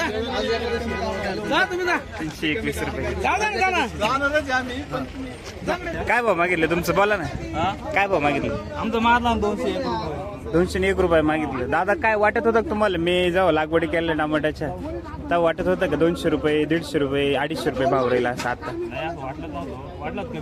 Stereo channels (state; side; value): identical; both; correlation 1.00